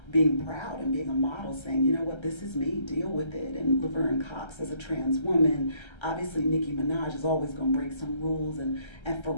being proud and being a model, saying, you know what, this is me, deal with it. And Laverne Cox as a trans woman. Obviously Nicki Minaj is always gonna break some rules, and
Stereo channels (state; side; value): late; right; 1.3 ms